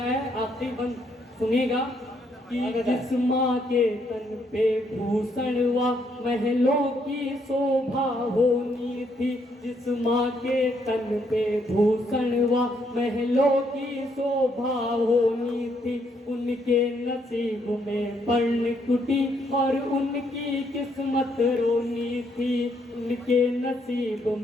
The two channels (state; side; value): normal; both; correlation 0.73